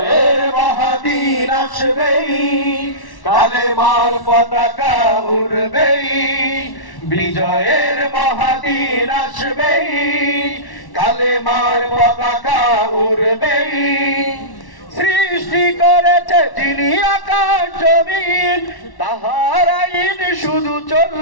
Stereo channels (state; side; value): late; right; 1.1 ms